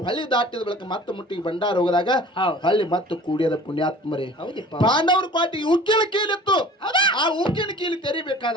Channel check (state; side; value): normal; both; correlation 0.45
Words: ಹೊಳ್ಳಿ ದಾಟಿದ ಬಳಿಕ ಮತ್ತೆ ಮುಟ್ಟಿಗೆ ಭಂಡಾರ ಹೋಗದಾಗ ಹೌದು. ಹೊಳ್ಳಿ ಮತ್ತೆ ಕೂಡಿಯದ ಪುಣ್ಯಾತ್ಮರೇ. ಹೌದಿಪ್ಪ. ಪಾಂಡವರು ಕ್ವಾಟಿಗೆ ಉಕ್ಕಿನ ಕೀಲಿತ್ತು. ಆ ಉಕ್ಕಿನ ಕೀಲಿ